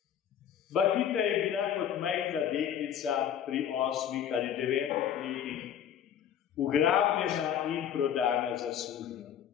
Bakita je bila kot majhna deklica pri 8 ali 9 letih ugrabljena in prodana za sužnjo.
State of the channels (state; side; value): quieter; right; 9.3 dB